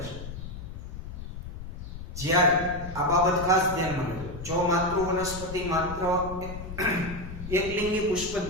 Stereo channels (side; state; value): left; noise; rumble, 9 dB below the sound